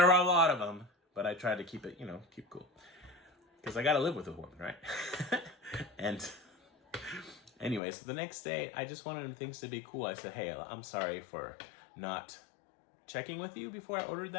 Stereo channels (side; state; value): right; drops out; at 7.8 s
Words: are a lot of them. But I tried to keep it, keep cool. Because I got to live with a woman, right? And anyway, so the next day, I just wanted things to be cool. I said, hey, I'm sorry for not checking with you before I ordered